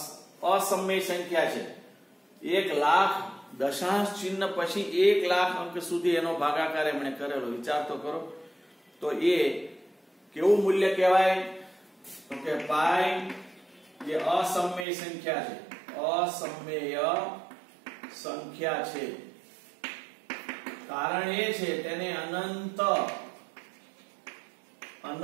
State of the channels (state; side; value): drops out; left; at 14.9 s